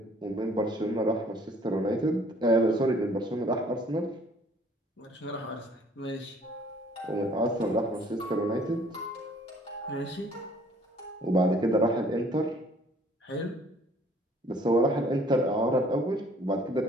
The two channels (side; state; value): both; normal; correlation 0.57